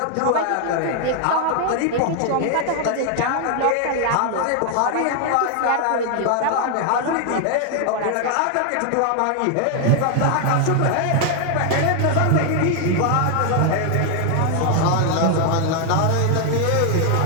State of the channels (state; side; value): different; both; correlation 0.00